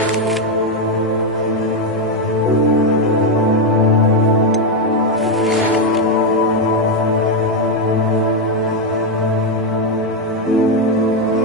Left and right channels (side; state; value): both; normal; correlation 0.05